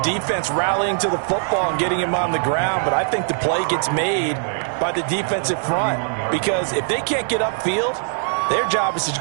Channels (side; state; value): left; silent; digital silence